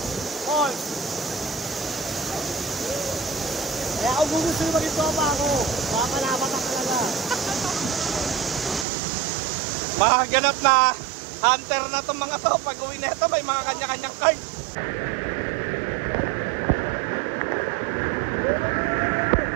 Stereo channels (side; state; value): left; drops out; at 8.8 s